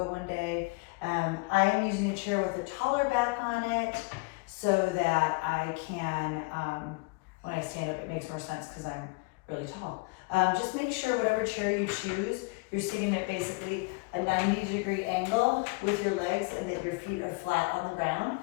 one day. I am using a chair with a taller back on it so that I can, when I stand up, it makes more sense because I'm really tall. Just make sure whatever chair you choose, you're sitting at basically a 90-degree angle with your legs and that your feet are flat on the ground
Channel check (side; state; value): right; quieter; 28.2 dB